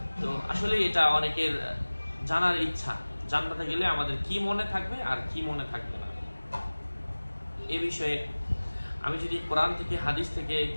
তো আসলে এটা অনেকের জানার ইচ্ছা, জান্নাতে গেলে আমাদের কি মনে থাকবে আর কি মনে থাকবে না। এ বিষয়ে আমি যদি কোরআন থেকে হাদিস থেকে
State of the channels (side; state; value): both; inverted; correlation -1.00